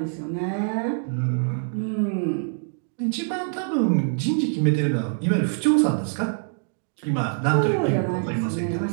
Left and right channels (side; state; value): left; silent; 62 dB below the other